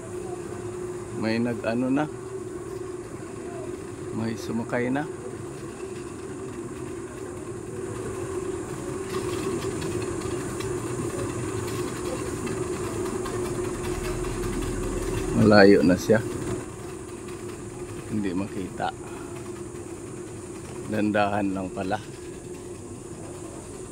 May nag-ano na. May sumakay na. Malayo na siya. Hindi makita. Dandahan lang pala.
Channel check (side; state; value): both; identical; correlation 1.00